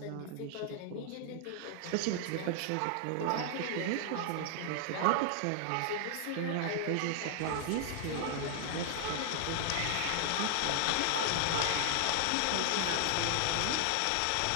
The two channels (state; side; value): different; both; correlation 0.00